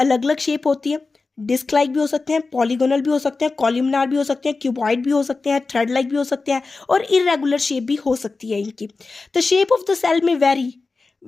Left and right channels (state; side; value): quieter; right; 3.9 dB